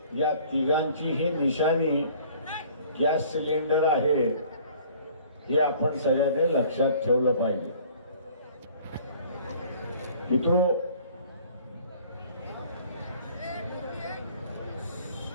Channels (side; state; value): both; inverted; correlation -0.53